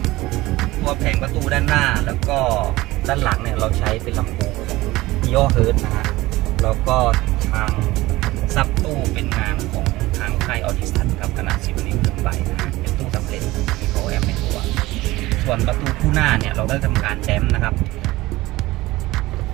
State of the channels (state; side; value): quieter; left; 18.7 dB